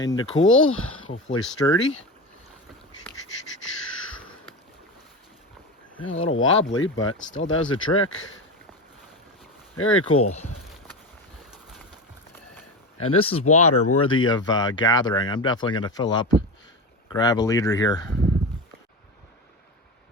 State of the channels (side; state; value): both; normal; correlation 0.22